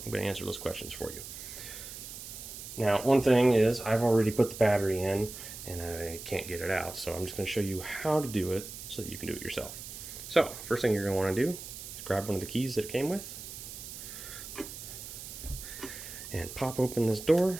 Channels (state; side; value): noise; right; hiss, 11 dB below the sound